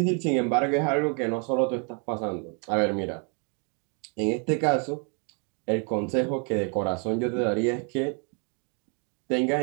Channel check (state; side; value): quieter; left; 38.1 dB